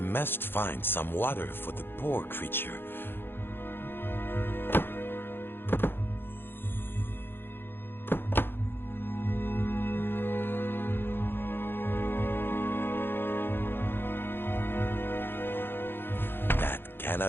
must find some water for the poor creature. That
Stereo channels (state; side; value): late; right; 0.10 ms